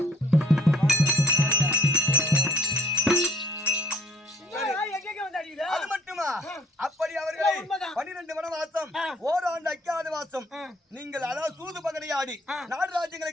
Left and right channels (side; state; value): both; normal; correlation 0.61